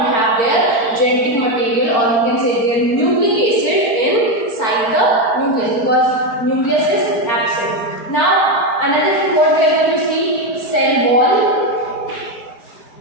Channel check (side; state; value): right; late; 4.4 ms